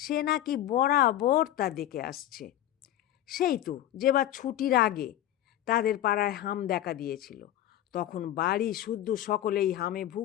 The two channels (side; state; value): right; quieter; 12.7 dB